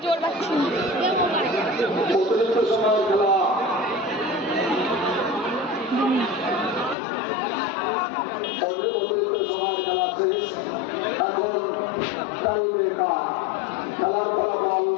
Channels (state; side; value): drops out; right; at 7.0 s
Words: জোর পাচ্ছি। অতিরিক্ত সময়ের খেলা শেষ। এখন টাই ব্রেকার। খেলার ফলাফল